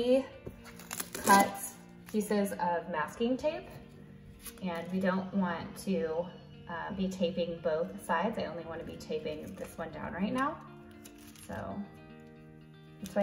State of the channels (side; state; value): both; identical; correlation 1.00